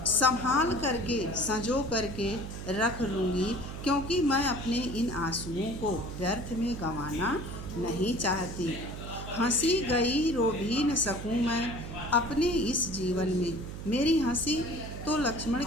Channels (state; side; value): noise; right; hum, 9 dB below the sound